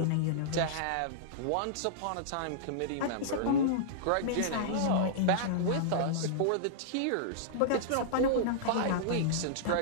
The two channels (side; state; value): both; different; correlation -0.02